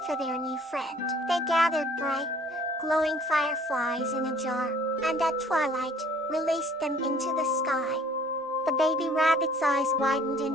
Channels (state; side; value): normal; both; correlation 0.55